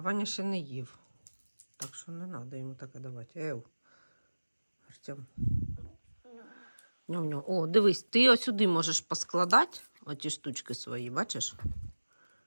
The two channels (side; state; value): both; inverted; correlation -1.00